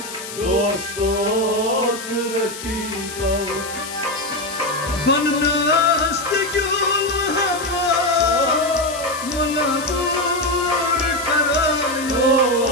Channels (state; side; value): noise; left; hiss, 11 dB below the sound